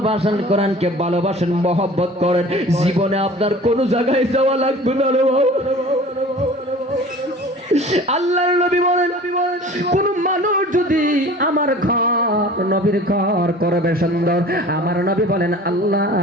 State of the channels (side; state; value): both; normal; correlation 0.43